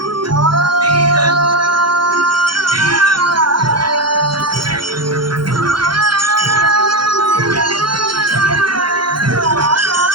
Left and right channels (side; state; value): left; late; 0.72 ms